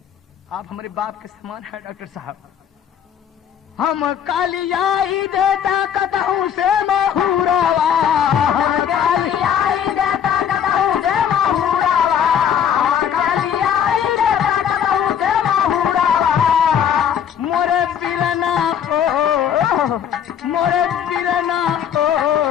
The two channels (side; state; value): right; quieter; 8.6 dB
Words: आप हमारे बाप के समान है डॉक्टर साहब। हम कालियाई देता कतहू से महुरावा, हम कालियाई देता कतहू से महुरावा, कालियाई देता कतहू से महुरावा, मोरे बिरना हो, मोरे बिरना हो,